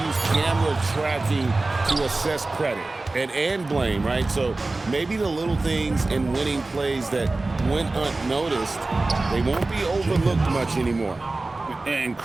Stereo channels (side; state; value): left; quieter; 3.2 dB